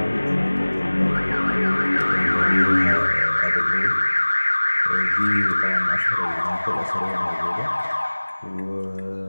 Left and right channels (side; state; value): both; inverted; correlation -1.00